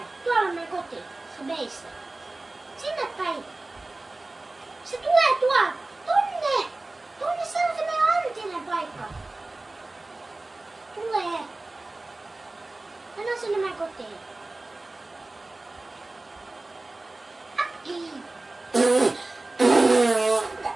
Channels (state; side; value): quieter; left; 3.0 dB